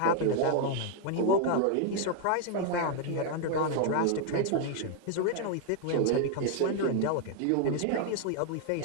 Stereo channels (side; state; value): both; different; correlation 0.00